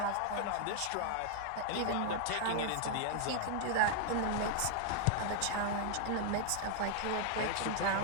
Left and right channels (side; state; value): both; different; correlation 0.00